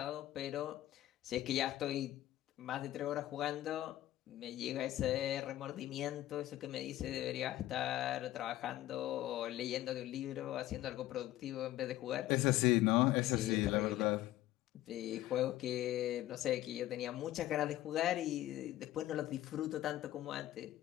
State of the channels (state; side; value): quieter; right; 14.7 dB